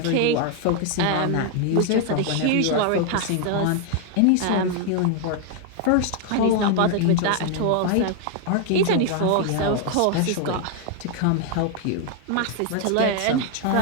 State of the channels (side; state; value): both; different; correlation 0.00